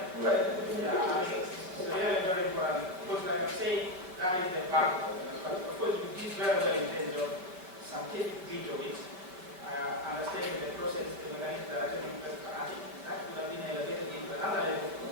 Right. Yeah, I mean, it's really very important. Of course, like I say, that is the backbone. Of course, we did very well in terms of scientific bit of it. Understanding the process, the mechanism that are taking place, that could have been elevated into another level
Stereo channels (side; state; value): left; late; 5.3 ms